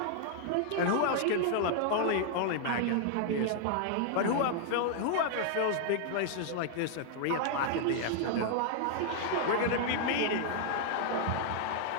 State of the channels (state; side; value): different; both; correlation 0.00